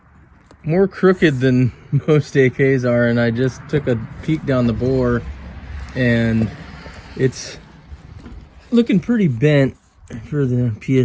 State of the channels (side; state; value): both; identical; correlation 1.00